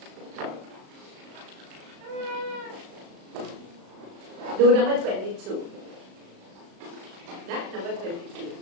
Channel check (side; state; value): left; late; 36 ms